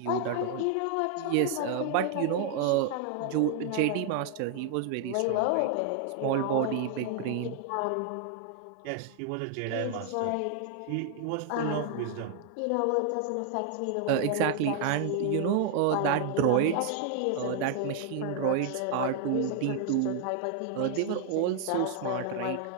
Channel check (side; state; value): both; different; correlation 0.00